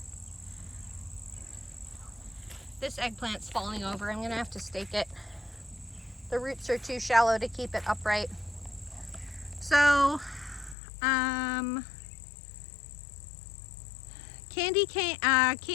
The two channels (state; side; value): drops out; right; at 10.8 s